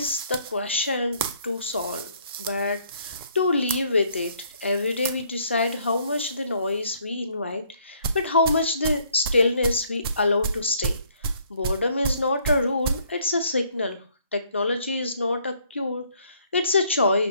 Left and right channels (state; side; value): inverted; both; correlation -0.65